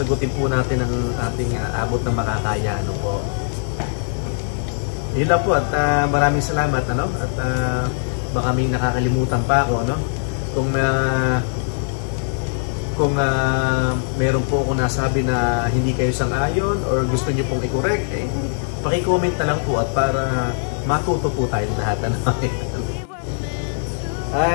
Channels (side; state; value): right; silent; digital silence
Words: po natin ang ating abot ng makakaya, po. Yun lang po, at maraming salamat, at baka may nakakalimutan pa ako, kung meron po ako nasabi na hindi kayo sang-ayon or gusto niyo pong i-correct, paki-comment na lang po, at para matuto po tayo lahat.